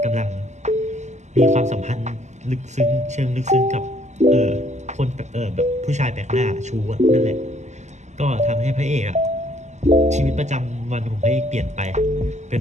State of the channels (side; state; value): left; late; 0.33 ms